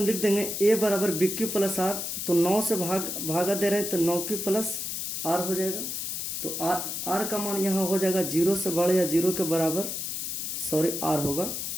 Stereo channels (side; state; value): left; noise; hiss, 4 dB below the sound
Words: लिख देंगे a बराबर bq प्लस r, तो 9 से भागा दे रहे हैं तो 9q प्लस r हो जाएगा। तो r का मान यहाँ हो जाएगा 0 से बड़ा या 0 के बराबर, सॉरी r होगा,